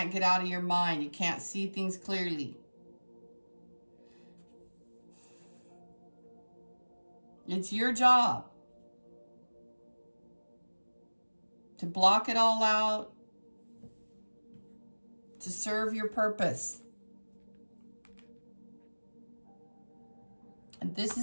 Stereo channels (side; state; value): both; inverted; correlation -1.00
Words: get out of your mind. You can't see things clearly. It's your job to block it all out, to serve your purpose. And this